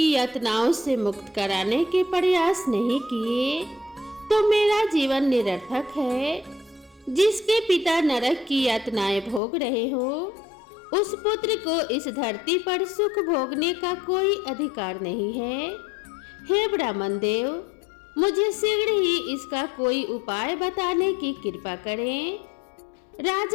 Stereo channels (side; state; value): right; drops out; at 9.4 s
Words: यातनाओं से मुक्त कराने के प्रयास नहीं किए तो मेरा जीवन निरर्थक है। जिसके पिता नरक की यातनाएं भोग रहे हो उस पुत्र को इस धरती पर सुख भोगने का कोई अधिकार नहीं है। हे ब्राह्मण देव, मुझे शीघ्र ही इसका कोई उपाय बताने की कृपा करें।